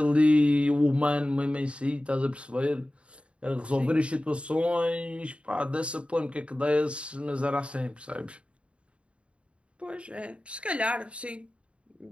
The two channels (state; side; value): late; left; 0.059 ms